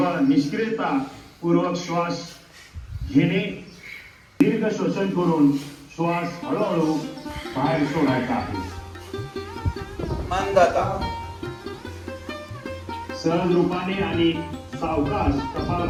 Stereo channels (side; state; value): both; identical; correlation 1.00